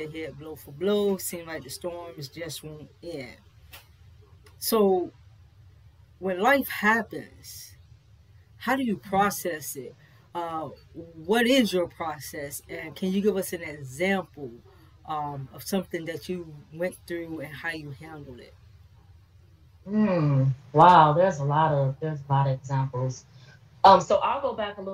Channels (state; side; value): identical; both; correlation 1.00